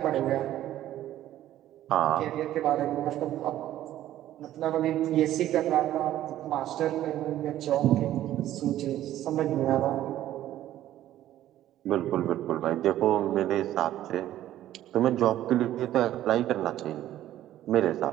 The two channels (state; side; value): quieter; left; 13.1 dB